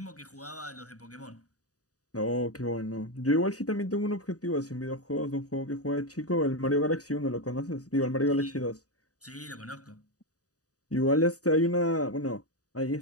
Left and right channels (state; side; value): late; right; 0.67 ms